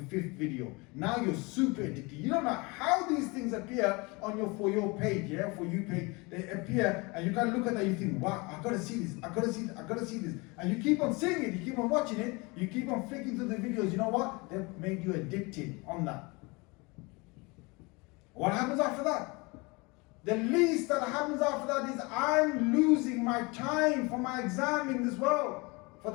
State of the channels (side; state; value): right; quieter; 26.6 dB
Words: 5th video. Now you're super addicted. You don't know how these things appear on your For You page, yeah, For You page. They appear and you can look at that and you think, wow, I've got to see this, I've got to see this, I've got to see this. And you keep on seeing it, you keep on watching it, you keep on flicking through the videos. You know what? They've made you addicted on that. What happens after that? The least that happens after that is I'm losing my time for my exam in this world, for